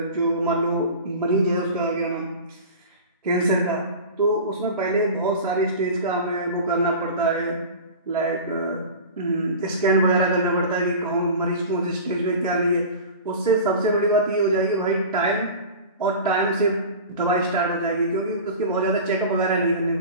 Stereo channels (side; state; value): both; inverted; correlation -0.34